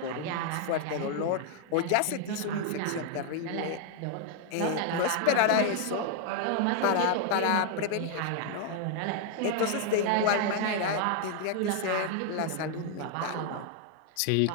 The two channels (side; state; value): both; different; correlation 0.00